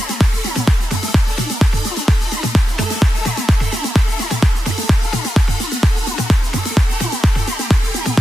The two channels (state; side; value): normal; both; correlation 0.90